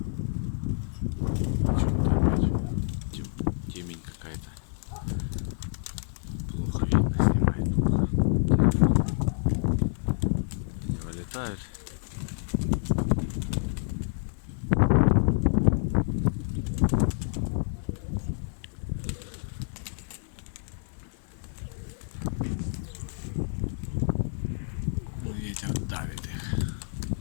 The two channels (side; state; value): right; silent; digital silence